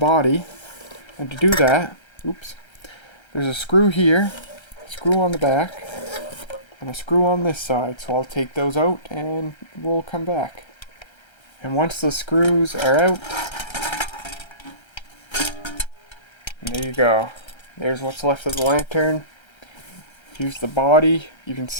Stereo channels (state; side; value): late; right; 1.3 ms